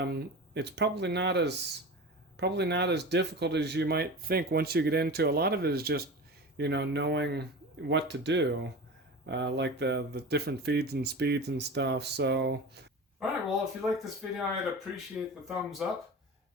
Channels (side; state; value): both; normal; correlation 0.31